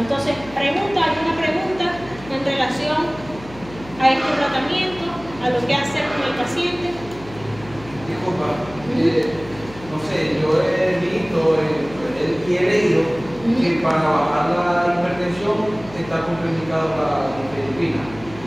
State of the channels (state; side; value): noise; left; hum, 18 dB below the sound